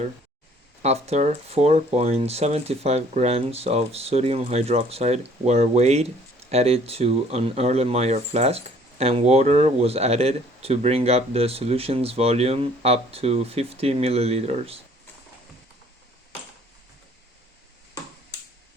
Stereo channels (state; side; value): normal; both; correlation 0.57